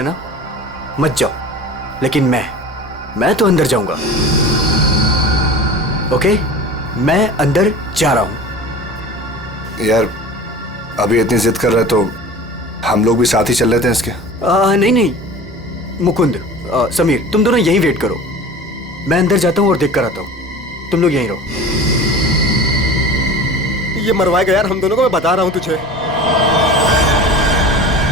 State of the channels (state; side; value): normal; both; correlation 0.37